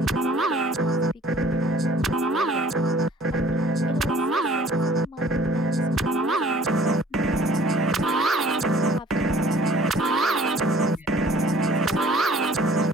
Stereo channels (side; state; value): both; normal; correlation 0.53